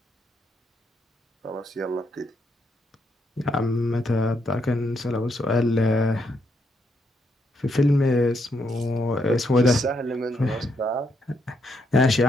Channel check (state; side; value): normal; both; correlation 0.77